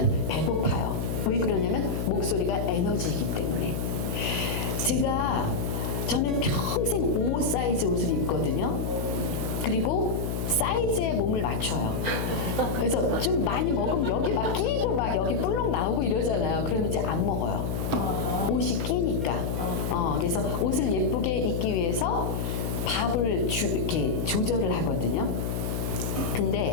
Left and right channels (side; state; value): left; noise; hum, 1 dB below the sound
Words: 배고파요. 왜 그러냐면 목소리가 에너지이기 때문에. 저는 평생 5 사이즈 옷을 입거든요. 그리고 사이즈에 몸을 맞춰요. 그래서 좀 많이 먹으면 여기 막 끼고 막 여기 뿔룩 나오고 이러잖아요. 그러면 이제 안 먹어요. 옷이 끼니까. 그래서 옷을 예쁘게 입기 위해서 밥을 이렇게 조절을 하거든요.